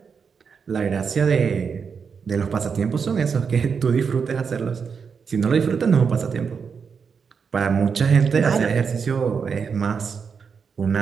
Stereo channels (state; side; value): quieter; left; 6.0 dB